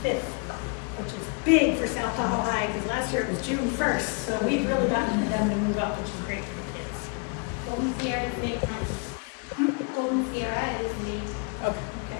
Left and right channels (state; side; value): quieter; right; 34.4 dB